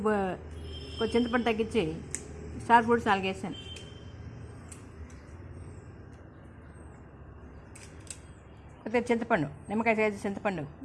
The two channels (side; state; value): both; identical; correlation 1.00